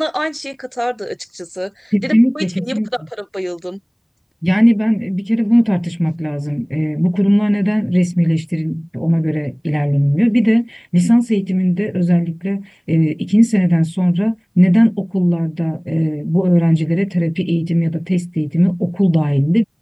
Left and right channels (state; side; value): identical; both; correlation 1.00